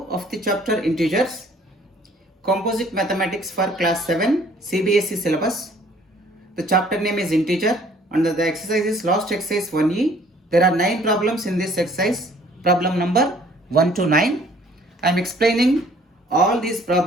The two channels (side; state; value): both; normal; correlation 0.57